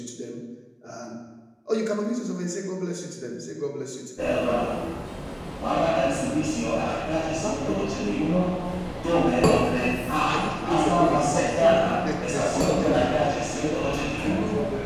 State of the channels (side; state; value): both; identical; correlation 1.00